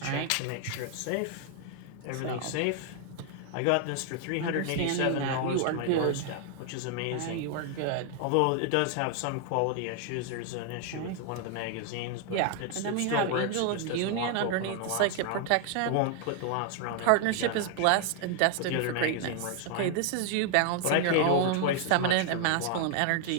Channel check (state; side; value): different; both; correlation 0.00